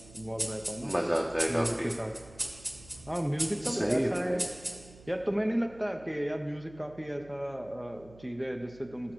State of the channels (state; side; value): noise; right; hum, 21 dB below the sound